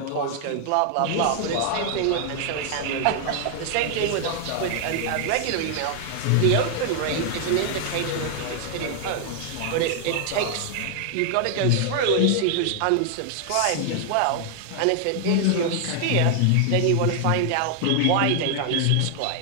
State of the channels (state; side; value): different; both; correlation 0.00